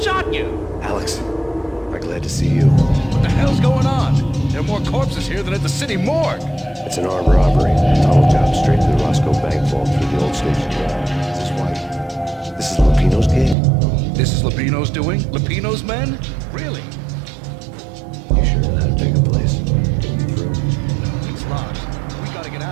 you. Alex, I'm glad to see you. What the hell's going on? There are more corpses here than at the city morgue. It's an armed robbery. Tunnel job straight to the Roscoe Bank vault through the old station. Is this why? This is Lupino's gig? This is Lupino's doing? Lupino's men? Really? You sure know how to take a place? Get me through? It's locked. We gotta get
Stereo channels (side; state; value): left; drops out; at 13.6 s